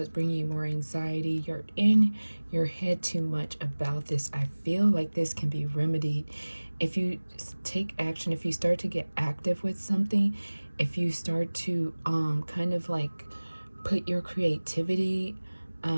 bringing you more anxiety. You're in your head too much about this. I feel like this can be remedied if you take action, if you start to get active with something, if you start to kind of like put your creativity,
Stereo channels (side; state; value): both; inverted; correlation -1.00